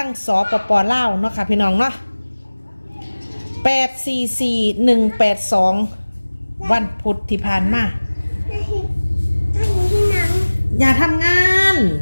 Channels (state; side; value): inverted; both; correlation -1.00